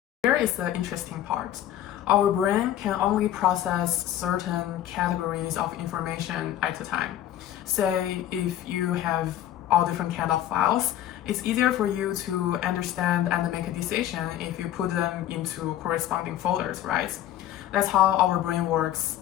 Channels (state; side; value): quieter; right; 12.1 dB